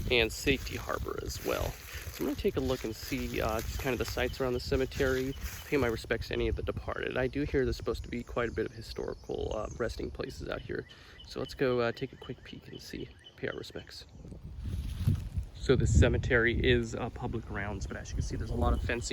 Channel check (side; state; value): both; identical; correlation 1.00